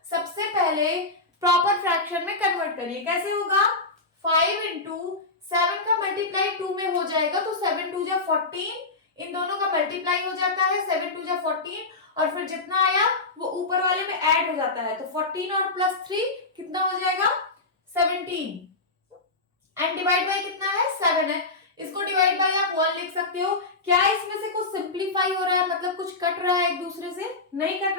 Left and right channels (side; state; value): right; quieter; 3.4 dB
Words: सबसे पहले प्रॉपर फ्रैक्शन में कन्वर्ट करिए। कैसे होगा, 5 इंटू 7 का मल्टीप्लाई 2 में हो जाएगा, तो 7 2 जा 14, इन दोनों का मल्टीप्लाई हो जाता है, 7 2 जा 14, और फिर जितना आया वो ऊपर वाले में ऐड हो जाता है, तो 14 और प्लस 3 कितना हो जाएगा, 17, एंड डिवाइड बाय कितना है, 7 है। इसको डिवाइड बाय आप 1 लिख सकते हो। क्या इसमें से कुछ सिंप्लीफाई हो रहा है, मतलब कुछ कट रहा है एक दूसरे से, नहीं कट